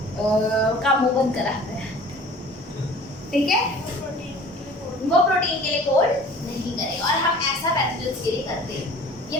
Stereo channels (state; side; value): normal; both; correlation 0.46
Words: का मुंह बंद कराते हैं, ठीक है। वो प्रोटीन के लिए कोड नहीं करेगा और हम ऐसा पैथोजेंस के लिए करते हैं। ये